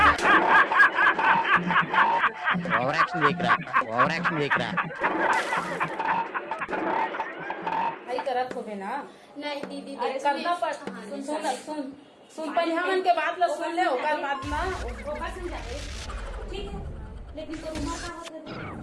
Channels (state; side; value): identical; both; correlation 1.00